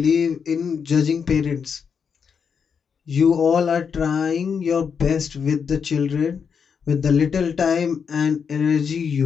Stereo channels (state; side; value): quieter; right; 6.5 dB